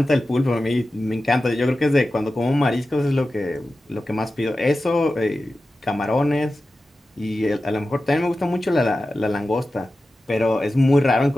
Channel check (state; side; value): normal; both; correlation 0.94